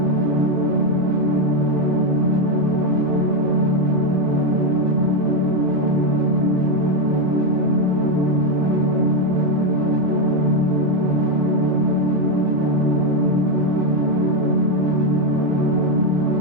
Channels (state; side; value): late; left; 35 ms